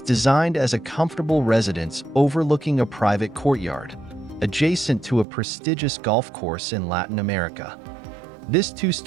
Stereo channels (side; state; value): left; drops out; at 5.2 s